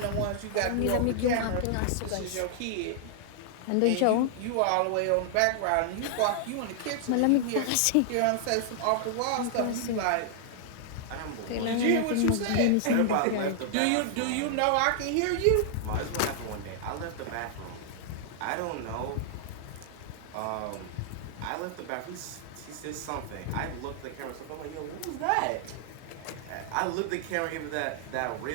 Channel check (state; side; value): different; both; correlation -0.01